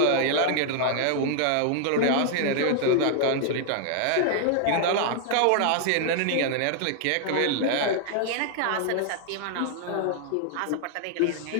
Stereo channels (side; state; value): both; different; correlation 0.00